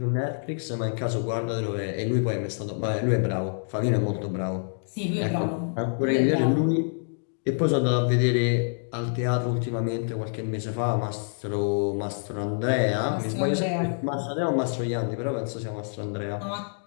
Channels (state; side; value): silent; right; digital silence